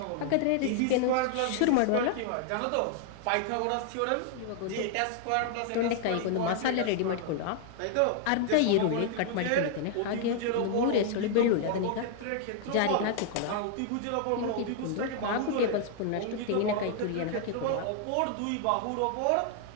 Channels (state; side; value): different; both; correlation 0.00